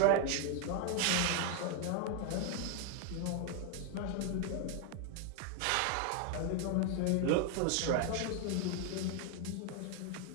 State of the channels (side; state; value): both; different; correlation 0.00